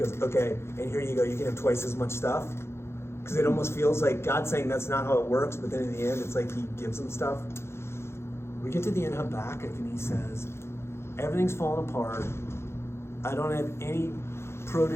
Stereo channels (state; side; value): late; right; 0.12 ms